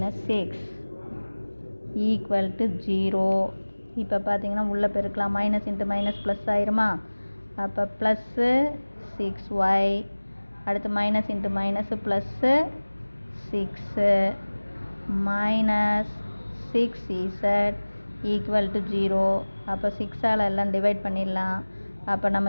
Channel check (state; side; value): inverted; both; correlation -1.00